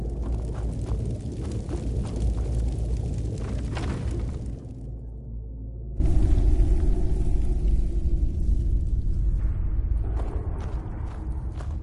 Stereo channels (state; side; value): identical; both; correlation 1.00